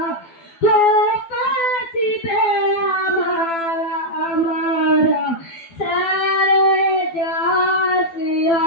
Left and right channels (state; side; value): late; right; 12 ms